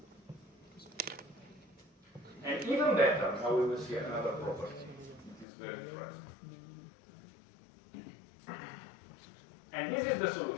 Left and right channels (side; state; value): right; drops out; at 5.5 s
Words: And even better, now we will see another property. It is very interesting. And this is the